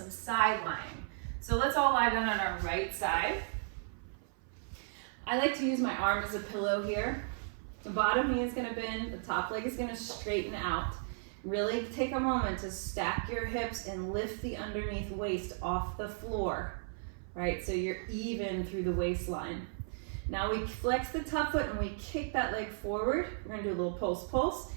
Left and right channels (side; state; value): left; silent; 54 dB below the other